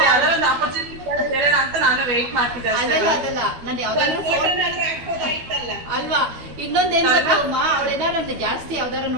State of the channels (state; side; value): late; left; 12 ms